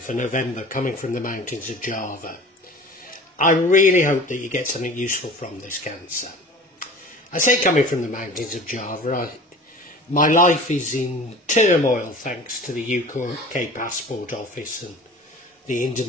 November coming from the mountains of Java. I really hope that you get something useful from this, Cancer. I say coming from the mountains of Java, my life is in turmoil thanks to the UK Passport Office and the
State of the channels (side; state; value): both; normal; correlation 0.41